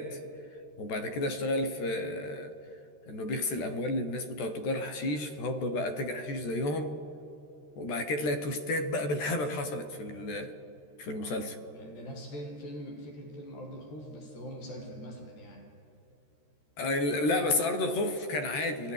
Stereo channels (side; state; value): right; late; 13 ms